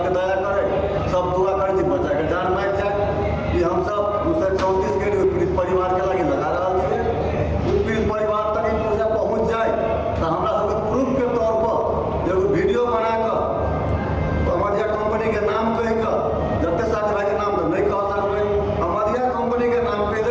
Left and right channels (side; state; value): both; identical; correlation 1.00